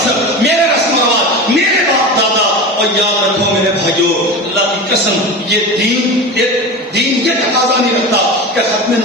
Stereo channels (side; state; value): both; normal; correlation 0.28